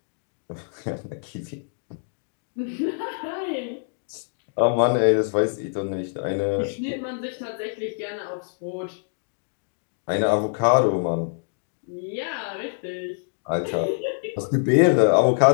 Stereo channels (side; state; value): right; silent; digital silence